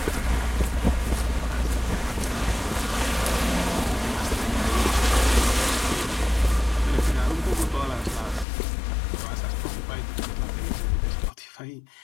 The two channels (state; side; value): drops out; right; at 8.5 s